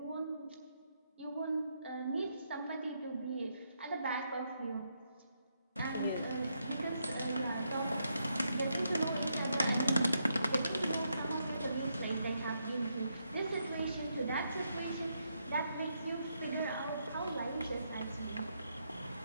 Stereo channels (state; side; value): inverted; both; correlation -0.80